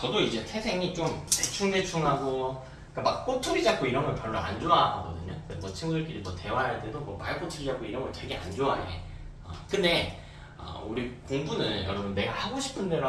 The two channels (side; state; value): both; identical; correlation 1.00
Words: 이제 태생이 좀 대충대충하고 그러니까 막 꼬투리 잡고 이런 걸 별로 안 좋아하거든요. 뭐 친구들끼리 뭐 대화할 때도 뭐 말꼬투리 잡고 이런 걸 되게 안 좋아해. 근데 우리 공부는 여러분 내가 하고 싶은 대로